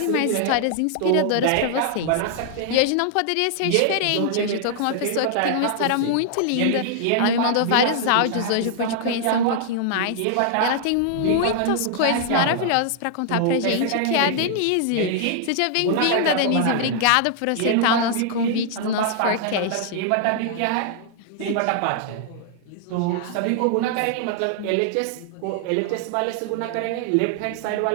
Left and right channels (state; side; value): different; both; correlation -0.01